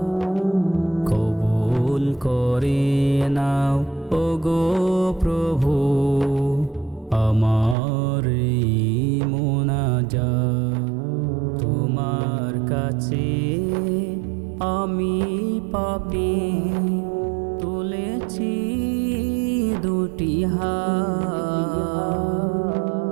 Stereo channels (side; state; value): left; drops out; at 7.8 s